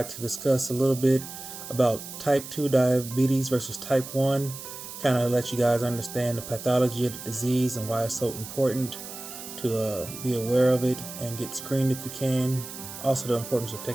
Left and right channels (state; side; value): noise; right; hiss, 11 dB below the sound